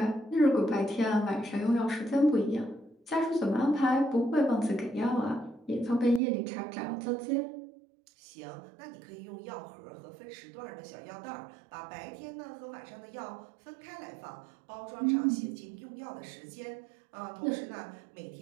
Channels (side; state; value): left; drops out; at 6.2 s